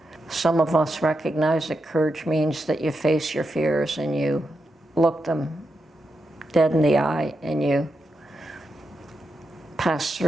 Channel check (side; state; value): both; normal; correlation 0.86